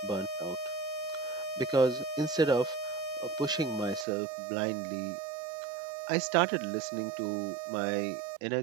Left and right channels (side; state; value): left; drops out; at 4.0 s